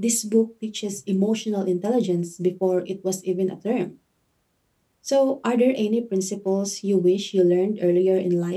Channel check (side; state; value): both; identical; correlation 1.00